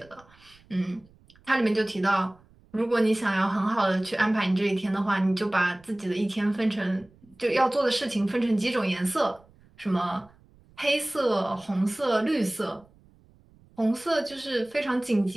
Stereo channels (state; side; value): noise; right; rumble, 29 dB below the sound